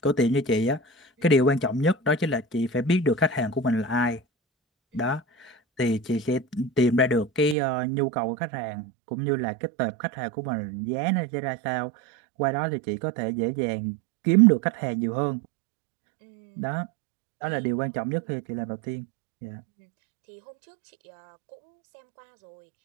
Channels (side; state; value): left; drops out; at 7.6 s